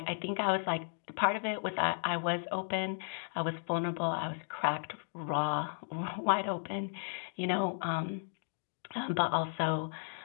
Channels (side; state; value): right; silent; digital silence